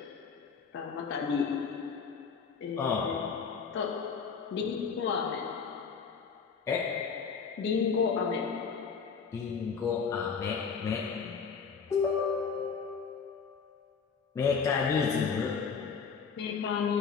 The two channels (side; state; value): right; quieter; 5.8 dB